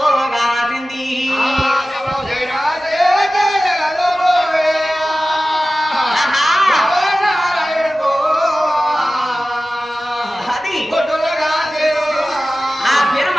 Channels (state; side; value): normal; both; correlation 0.96